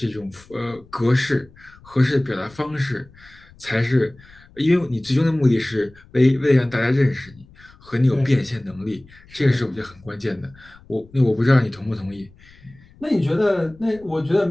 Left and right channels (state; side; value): noise; left; rumble, 25 dB below the sound